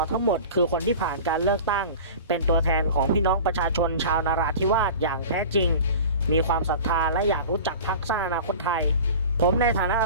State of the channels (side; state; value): both; inverted; correlation -0.37